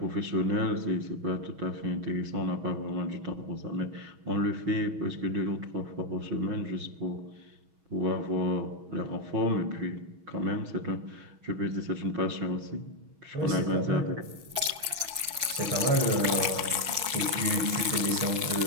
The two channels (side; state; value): left; late; 6.2 ms